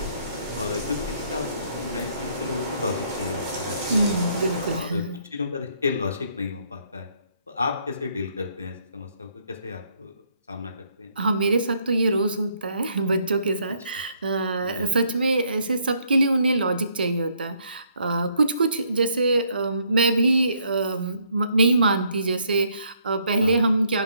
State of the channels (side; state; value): both; inverted; correlation -0.69